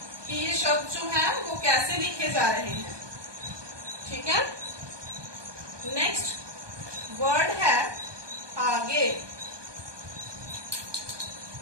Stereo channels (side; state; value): left; late; 1.2 ms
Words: कि ये शब्द जो है वो कैसे लिखे जा रहे हैं। ठीक है। नेक्स्ट वर्ड है आगे।